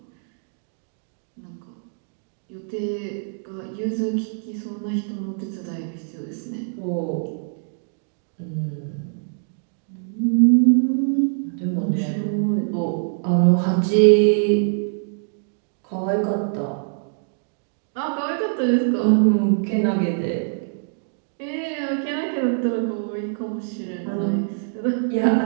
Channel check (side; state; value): left; silent; digital silence